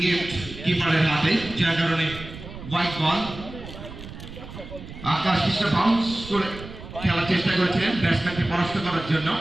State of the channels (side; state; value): right; noise; rumble, 13 dB below the sound